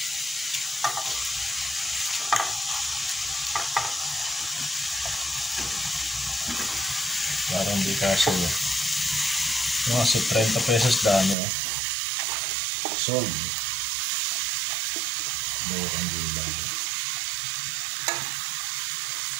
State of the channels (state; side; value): drops out; left; at 11.4 s